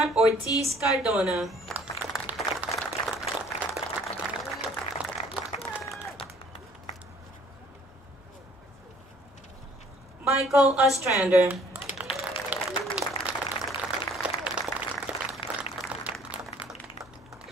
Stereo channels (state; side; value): normal; both; correlation 0.57